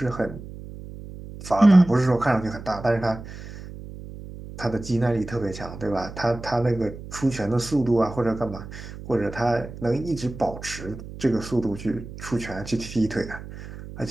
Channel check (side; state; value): right; noise; hum, 13 dB below the sound